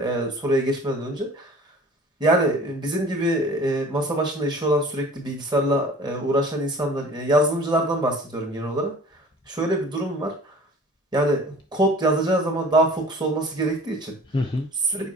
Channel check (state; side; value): normal; both; correlation 0.46